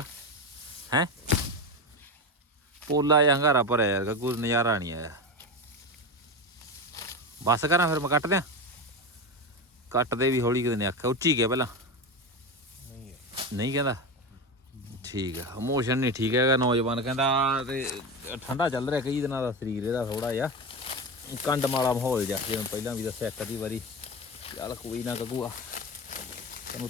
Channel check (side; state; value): both; normal; correlation 0.21